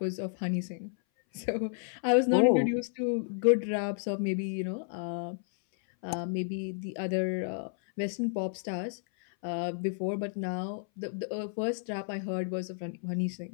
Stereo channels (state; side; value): silent; right; 57 dB below the other